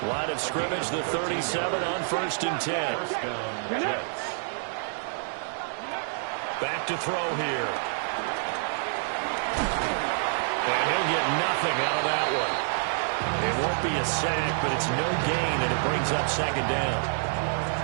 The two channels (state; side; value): silent; left; digital silence